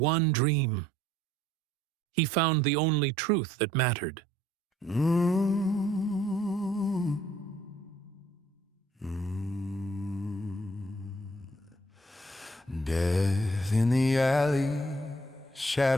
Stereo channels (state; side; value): normal; both; correlation 0.63